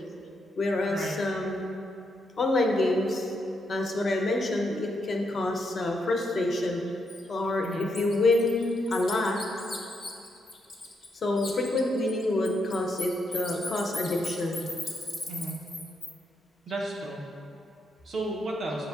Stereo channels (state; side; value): normal; both; correlation 0.80